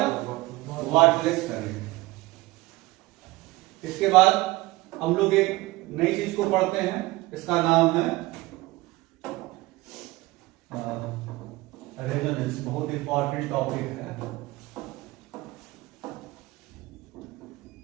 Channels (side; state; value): left; quieter; 19.9 dB